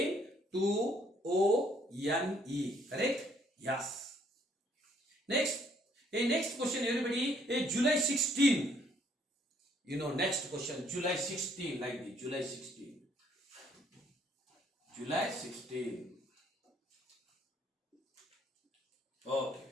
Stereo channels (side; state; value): both; normal; correlation 0.66